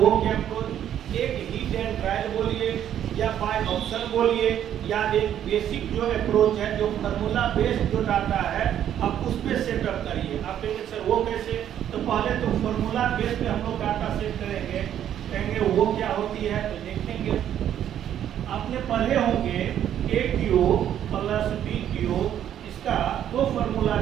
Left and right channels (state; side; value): quieter; left; 10.4 dB